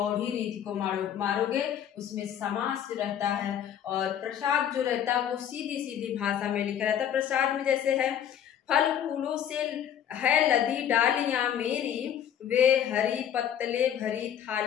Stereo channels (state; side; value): quieter; right; 9.6 dB